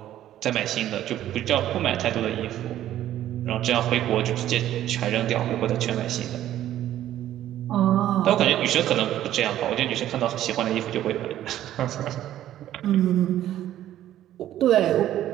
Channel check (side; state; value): left; quieter; 12.5 dB